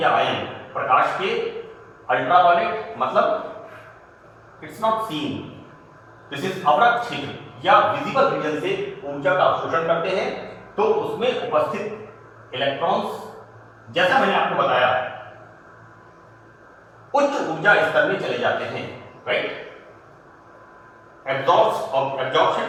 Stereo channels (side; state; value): both; identical; correlation 1.00